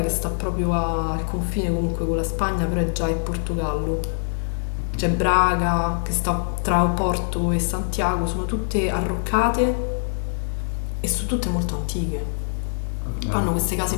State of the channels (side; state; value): right; silent; 63 dB below the other